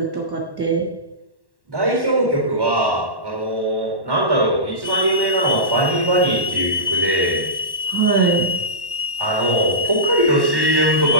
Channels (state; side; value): late; left; 1.1 ms